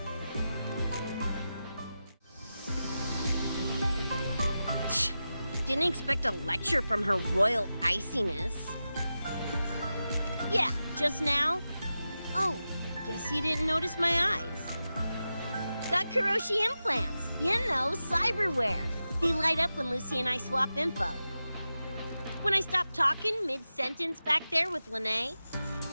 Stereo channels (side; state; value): both; inverted; correlation -0.92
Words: Didn't expect a lecture from her royal iciness. Yeah, just now? Oh, guess you didn't notice my eyes. Got Kuroshi implants. You know, cyberware. They light up when Lucy and I swap info. When I stop talking mid-sentence back there with Lene.